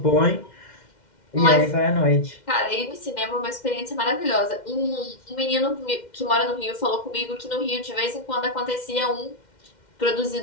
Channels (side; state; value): right; late; 2.1 ms